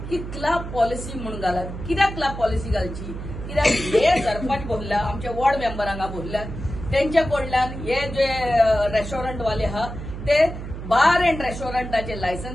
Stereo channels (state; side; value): noise; right; hum, 9 dB below the sound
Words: की क्लब पॉलिसी म्हणून घालात. कित्याक क्लब पॉलिसी घालची? कित्याक हे सरपंच बोलल्या, आमच्या वॉर्ड मेंबरांक बोलल्यात, त्यांच्या कडल्यान हे जे रेस्टॉरंट वाले आहा ते बार एंड रेस्टॉरंटाचे